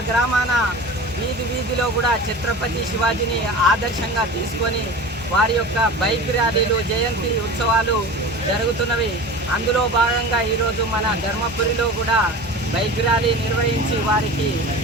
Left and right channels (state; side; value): normal; both; correlation 0.34